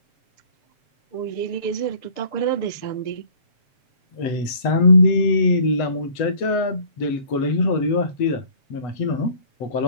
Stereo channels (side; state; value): right; late; 8.0 ms